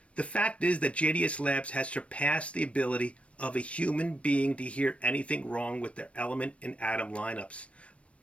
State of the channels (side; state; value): right; late; 0.062 ms